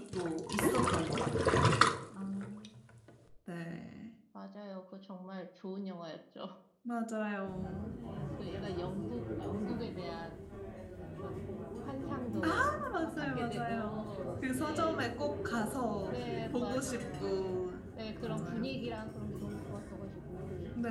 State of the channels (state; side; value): identical; both; correlation 1.00